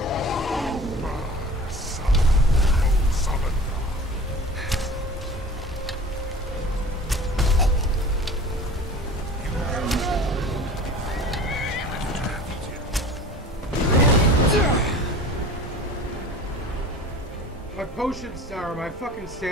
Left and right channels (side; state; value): both; normal; correlation 0.41